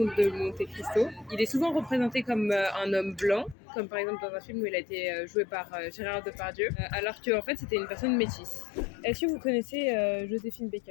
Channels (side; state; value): right; drops out; at 3.6 s